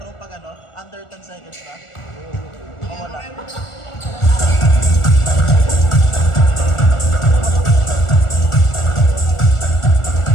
pag ano, under 10 seconds na? O wala?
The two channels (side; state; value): right; late; 1.4 ms